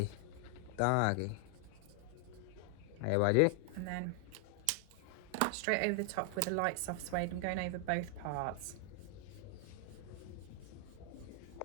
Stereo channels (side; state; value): both; different; correlation 0.00